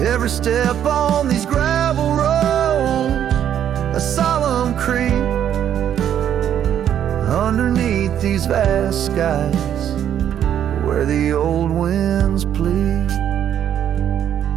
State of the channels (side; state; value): left; quieter; 9.9 dB